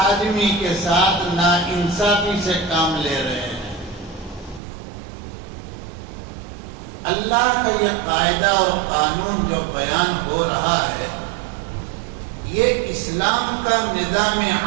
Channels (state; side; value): drops out; left; at 4.6 s